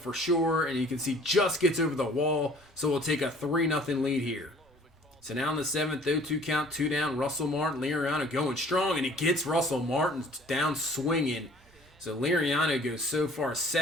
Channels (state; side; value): normal; both; correlation 0.53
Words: sure. And you can see just gets over the wall. So we'll take a 3-0 lead here. So now in the 7th, 0-2 count, 2 down. Russell Martin, Liriano going strong. And he gets Russell Martin down swinging. So Liriano goes so far